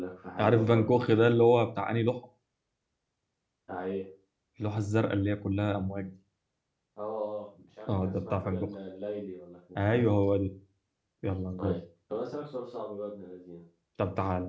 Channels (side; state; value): both; identical; correlation 1.00